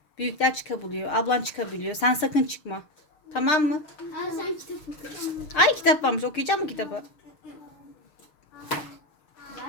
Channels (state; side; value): late; right; 6.6 ms